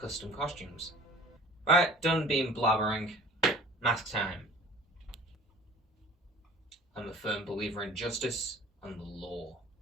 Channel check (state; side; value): normal; both; correlation 0.45